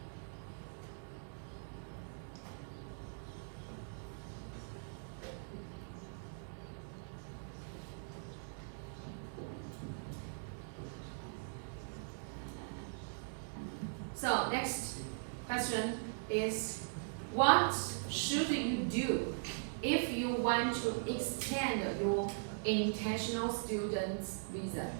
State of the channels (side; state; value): left; silent; digital silence